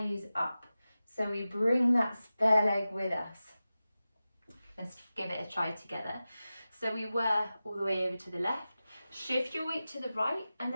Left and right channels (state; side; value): inverted; both; correlation -0.95